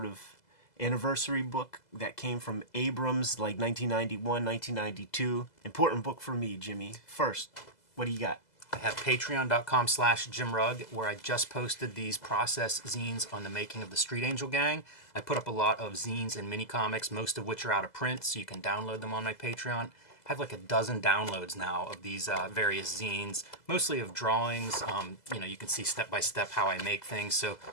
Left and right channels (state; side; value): late; right; 2.0 ms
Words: of anniversary book that came from Abrams, like 1991, 1992. Important book for me, Jimmy. First, what do you got? I have patreon.com/JimRugg, where I just posted these process zines on the making of the Street Angel Gang. I put up a lot of zines and mini comics, most of which are out of print, so you can download them on my Patreon. I have like a dozen downloads now of these various zines, mostly of drawings. You can see step by step how I make things. So